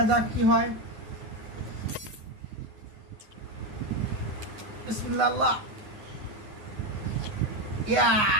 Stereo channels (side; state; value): left; late; 9.6 ms